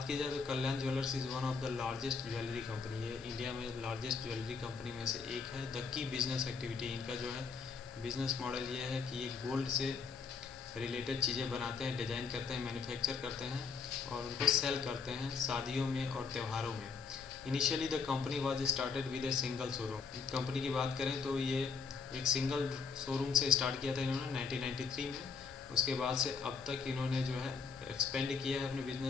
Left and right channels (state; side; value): quieter; right; 5.3 dB